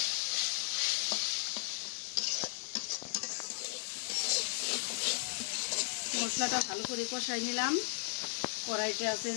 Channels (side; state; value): right; silent; digital silence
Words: মশলাটা ভালো করে কষাই নিলাম। কড়াইটা